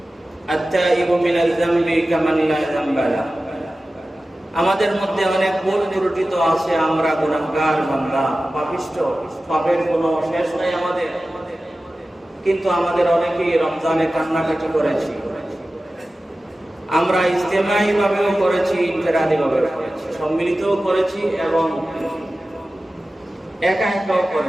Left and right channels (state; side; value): normal; both; correlation 0.95